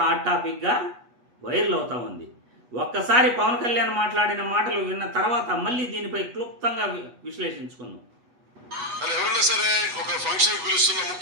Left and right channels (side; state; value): left; late; 8.2 ms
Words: టాపిక్గా వైరల్ అవుతా ఉంది. ఒక్కసారి పవన్ కళ్యాణ్ మాట్లాడిన మాటలు విన్న తర్వాత మళ్ళీ దీనిపై క్లుప్తంగా విశ్లేషించుకుందాం. ఎవరైనా సరే ఒక ఫంక్షన్ పిలుస్తున్న